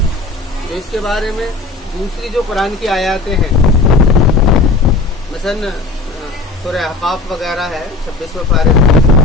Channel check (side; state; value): right; quieter; 3.5 dB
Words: تو اس کے بارے میں دوسری جو قرآن کی آیاتیں ہیں، مثلا سورہ احقاف وغیرہ ہے 26 پارے،